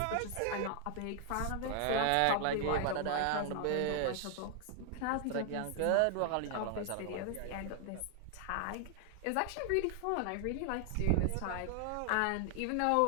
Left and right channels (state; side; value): different; both; correlation 0.00